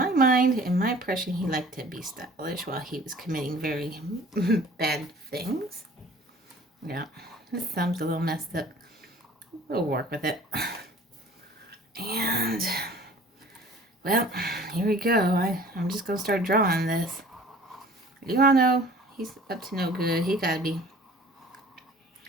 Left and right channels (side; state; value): both; normal; correlation 0.49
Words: mind, in my impression, he liked to be stylish while he was committing very bad things. Yeah, his thumb's a little messed up. We'll work with it. And, well, here we go. I'm just going to start drawing this. You all know he's up to no good. He got to be.